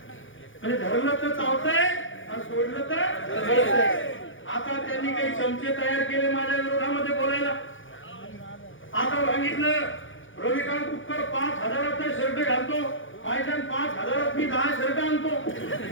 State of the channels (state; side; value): late; right; 0.57 ms